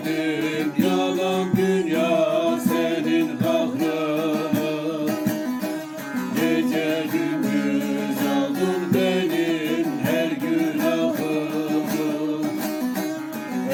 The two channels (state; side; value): identical; both; correlation 1.00